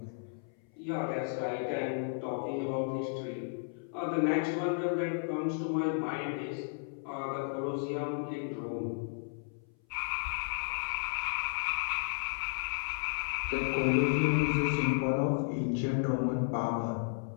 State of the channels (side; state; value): right; silent; 55 dB below the other